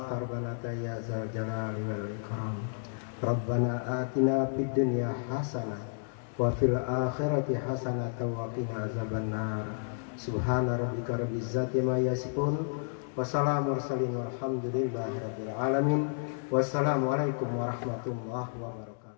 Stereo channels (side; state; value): right; silent; digital silence